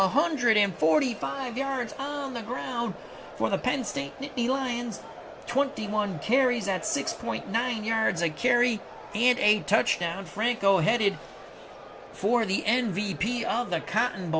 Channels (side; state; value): both; identical; correlation 1.00